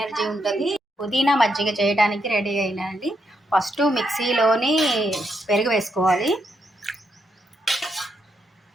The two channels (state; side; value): normal; both; correlation 0.79